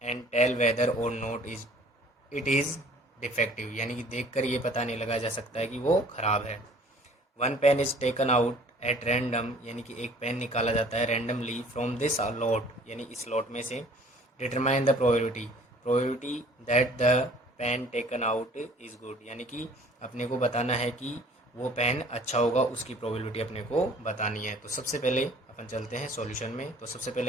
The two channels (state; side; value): normal; both; correlation 0.53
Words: and tell whether और not is it is defective, यानी कि देखकर ये पता नहीं लगा जा सकता है कि वो ख़राब है। One pen is taken out at random, यानी कि एक पेन निकाला जाता है रैंडमली फ्रॉम दिस लॉट, यानी इस लॉट में से। Determine the probability that the pen taken out is good, यानी कि अपने को बताना है कि वो पेन अच्छा होगा, उसकी प्रोबेबिलिटी अपने को बतानी है। तो सबसे पहले अपन चलते हैं सॉल्यूशन में। तो सबसे